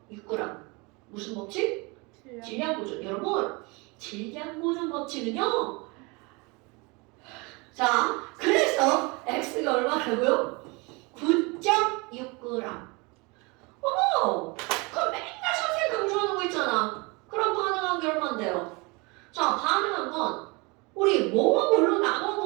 무슨 법칙? 질량 보존. 여러분, 질량 보존 법칙은요. 자, 그래서 X가 얼마라고요? 9.6g. 어머! 그럼 맨날 선생님 강조하는 거 있잖아. 그럼 반응한 게 얼만데요? 자, 반응한 건 우리 뭐와 뭘로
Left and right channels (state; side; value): quieter; left; 27.6 dB